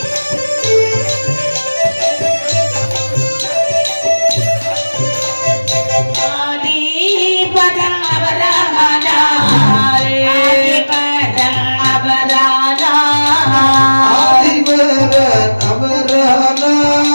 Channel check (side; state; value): both; inverted; correlation -1.00